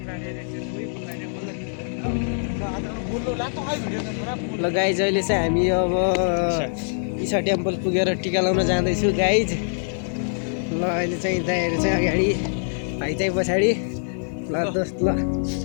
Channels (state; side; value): silent; right; digital silence